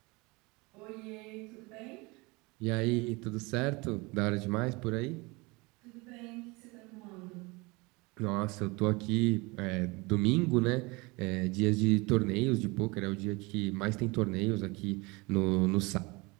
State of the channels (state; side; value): quieter; left; 25.5 dB